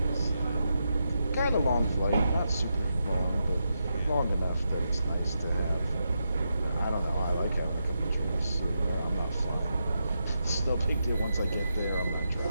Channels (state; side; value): inverted; both; correlation -0.85